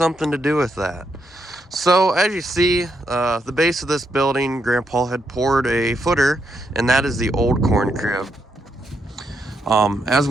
to do with that. So as you see, the base of this building, Grandpa had poured a footer, and that is the old corn crib. As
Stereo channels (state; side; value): normal; both; correlation 0.80